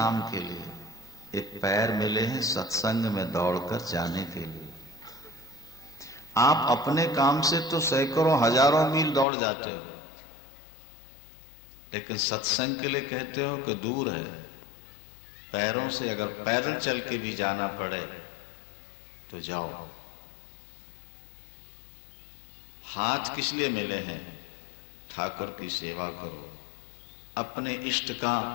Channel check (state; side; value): drops out; right; at 9.2 s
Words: के लिए, एक पैर मिले हैं सत्संग में दौड़कर जाने के लिए। आप अपने काम से तो सैकड़ों हजारों मील दौड़ जाते हो, लेकिन सत्संग के लिए कहते हो कि दूर है। पैरों से अगर पैदल चल के भी जाना पड़े तो जाओ। हाथ किस लिए मिले हैं? ठाकुर की सेवा करो, अपने